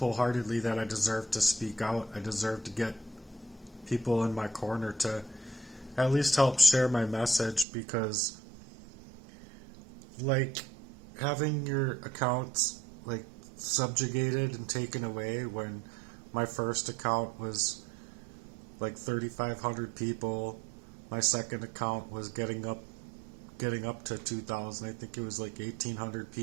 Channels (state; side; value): drops out; left; at 7.7 s